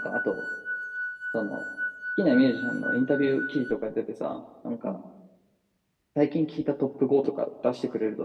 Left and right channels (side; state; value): both; identical; correlation 1.00